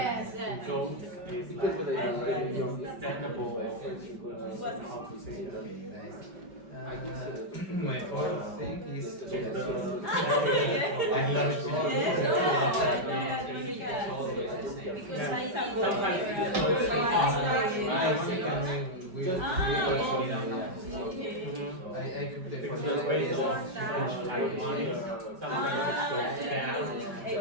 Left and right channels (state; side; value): late; left; 5.2 ms